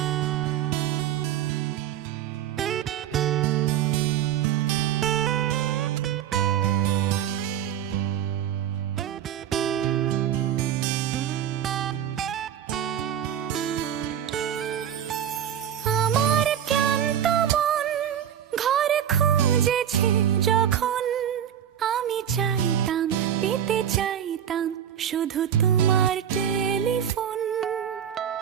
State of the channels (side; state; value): left; quieter; 9.7 dB